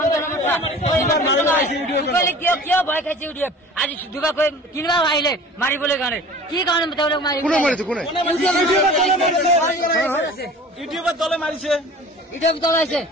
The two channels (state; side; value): normal; both; correlation 0.43